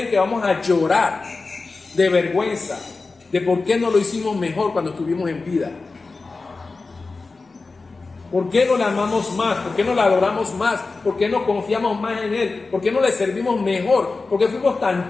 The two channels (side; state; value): right; quieter; 3.9 dB